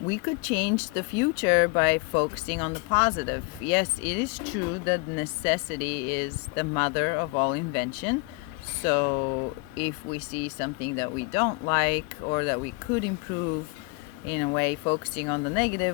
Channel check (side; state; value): right; quieter; 27.0 dB